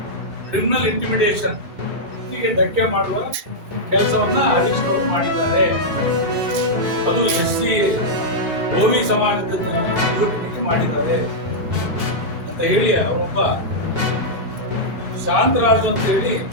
ಕ್ರಿಮಿನಲ್ ಇಂಟಿಮಿಡೇಷನ್ ಹೀಗೆ ಧಕ್ಕೆ ಮಾಡುವ ಕೆಲಸವನ್ನ ಹರೀಶ್ ಅವರು ಮಾಡಿದ್ದಾರೆ. ಅದು SC OB ಸಮಾಜದ ವಿರೋಧಿಗಳಿಗೆ ಮಾಡಿದ್ದಾರೆ ಅಂತ ಹೇಳಿ ಅವರೊಬ್ಬ ಶಾಂತರಾಜು ಅಂತ ಹೇಳಿ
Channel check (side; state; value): left; late; 2.5 ms